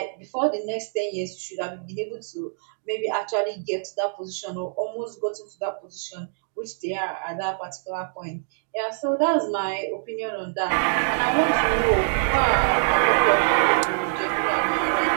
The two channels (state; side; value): silent; left; digital silence